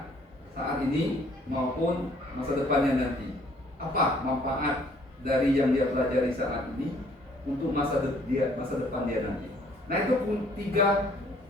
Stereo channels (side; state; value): both; normal; correlation 0.61